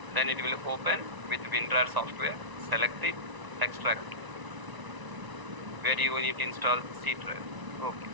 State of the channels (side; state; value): left; late; 1.0 ms